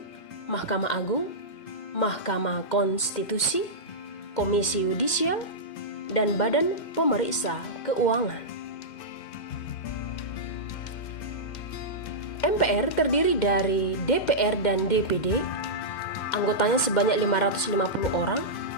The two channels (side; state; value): right; late; 2.1 ms